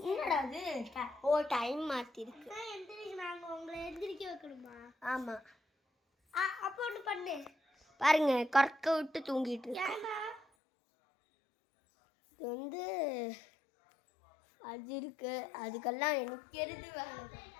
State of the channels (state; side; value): drops out; right; at 10.5 s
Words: என்னடா அது? ஓ டைம் மாற்றிருக்கு. நாங்கள் உங்களை எந்திரிக்க வைக்கணுமா? ஆமாம். அப்போ ஒன்று பண்ணு பாருங்க, கறக்க விட்டு தூங்கிட்டு இருக்கு. இது வந்து அது இருக்கு. அதுக்கெல்லாம் எனக்கு எது வேலை.